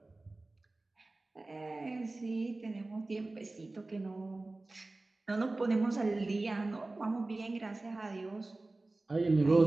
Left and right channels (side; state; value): left; quieter; 3.0 dB